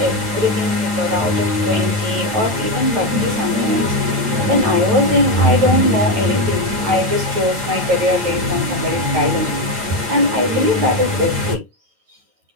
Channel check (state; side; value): late; left; 8.7 ms